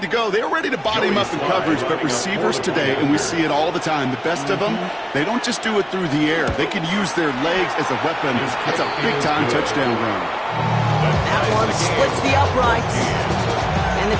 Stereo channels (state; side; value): identical; both; correlation 1.00